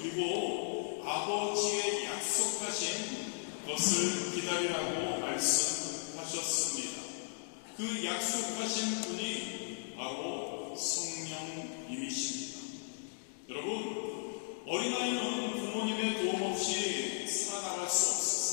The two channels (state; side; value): silent; right; digital silence